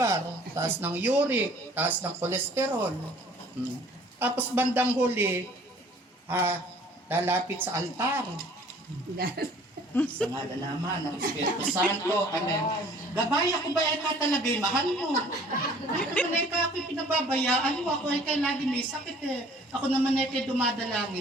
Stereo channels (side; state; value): both; normal; correlation 0.53